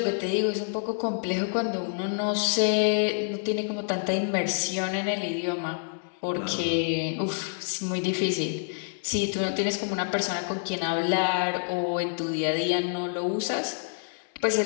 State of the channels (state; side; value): silent; right; digital silence